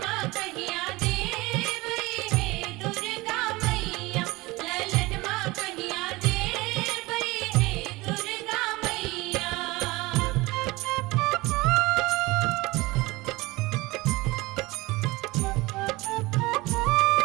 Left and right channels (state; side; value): quieter; left; 21.8 dB